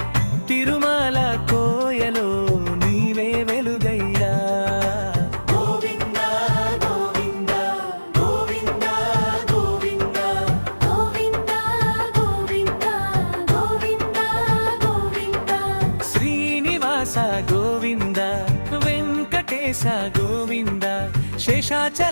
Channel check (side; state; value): both; inverted; correlation -1.00